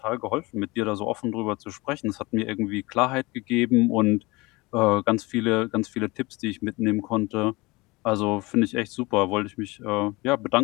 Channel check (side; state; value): right; quieter; 23.4 dB